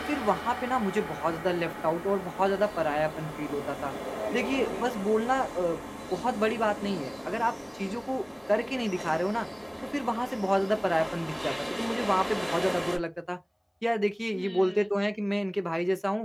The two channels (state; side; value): identical; both; correlation 1.00